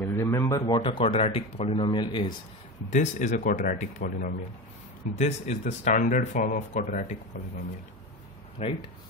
Remember what a quadratic polynomial is. This is a quadratic polynomial. This is the standard form of quadratic polynomial, right?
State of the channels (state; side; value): normal; both; correlation 0.24